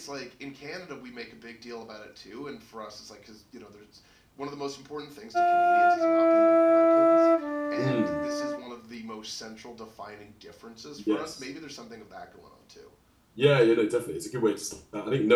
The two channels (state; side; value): identical; both; correlation 1.00